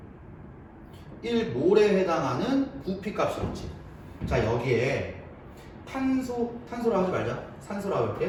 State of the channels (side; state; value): both; identical; correlation 1.00